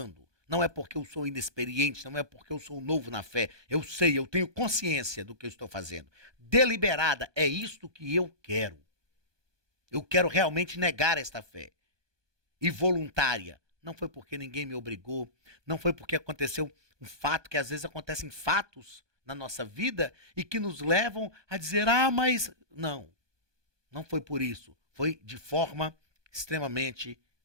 Não é porque eu sou inexperiente, não é porque eu sou novo na fé. Eu sei, eu tenho consciência do que eu estou fazendo. Deliberada, é isto que eu quero. Eu quero realmente negar esta fé. E voluntária, não foi porque ninguém me obrigou, não foi porque aconteceu um fato, que às vezes acontecem fatos na nossa vida e que nos levam a dizer, mas... Não foi por isso. Foi de forma extremamente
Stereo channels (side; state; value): left; late; 1.2 ms